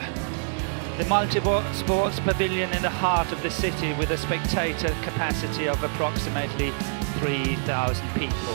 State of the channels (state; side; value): silent; left; digital silence